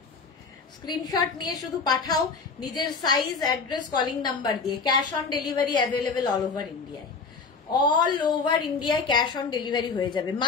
স্ক্রিনশট নিয়ে শুধু পাঠাও নিজের সাইজ, অ্যাড্রেস, কলিং নাম্বার দিয়ে। Cash on delivery available all over ইন্ডিয়ায়। অল ওভার ইন্ডিয়ায় ক্যাশ অন ডেলিভারি হয়ে যাবে।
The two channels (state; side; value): quieter; right; 4.8 dB